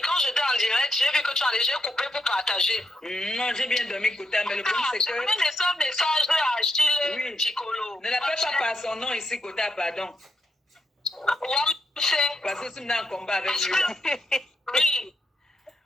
Quand j'étais en direct, j'ai vu que tu as déjà coupé pour partager. Non, j'ai bien dormi, Kota, mais le problème, c'est que... J'ai laissé un message à Achille Chikolo. Ne l'appelle pas par son nom ici, Kota, pardon. Parce que tu me en combat avec lui. Oui.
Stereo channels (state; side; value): normal; both; correlation 0.81